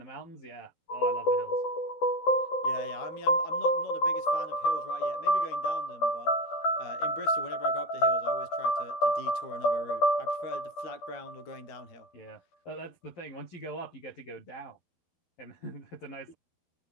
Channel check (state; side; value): late; right; 12 ms